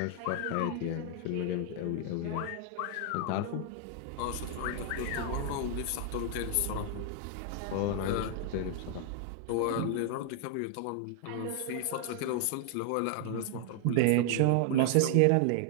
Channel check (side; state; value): both; different; correlation 0.00